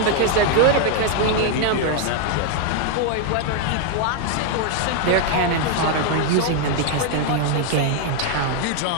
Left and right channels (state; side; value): different; both; correlation 0.00